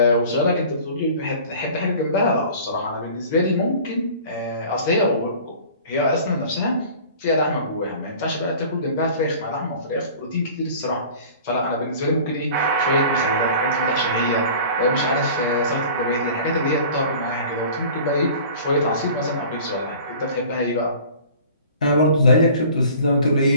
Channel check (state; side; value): inverted; both; correlation -0.45